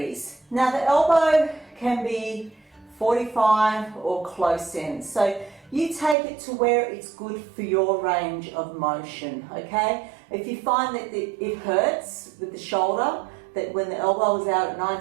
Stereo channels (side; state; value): left; drops out; at 6.2 s